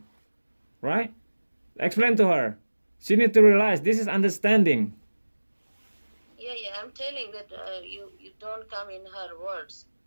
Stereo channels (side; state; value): both; inverted; correlation -1.00